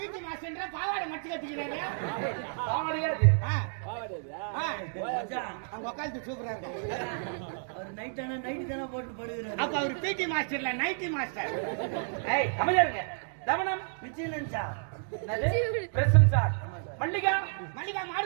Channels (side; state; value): left; silent; digital silence